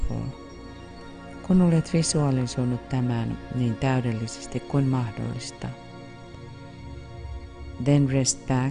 kun olet visualisoinut tämän niin täydellisesti kuin mahdollista, then rest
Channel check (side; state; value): both; identical; correlation 1.00